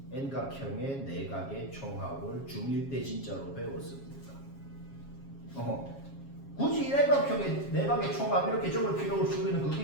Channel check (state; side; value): late; right; 7.3 ms